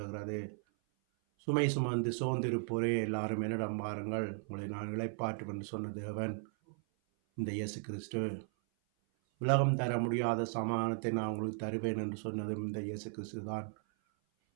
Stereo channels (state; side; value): silent; left; 54 dB below the other